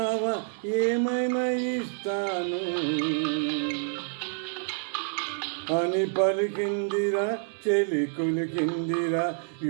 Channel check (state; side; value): silent; left; 59 dB below the other